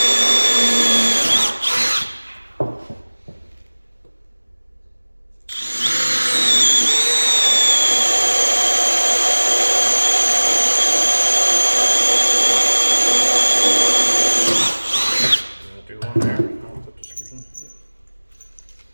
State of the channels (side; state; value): both; inverted; correlation -1.00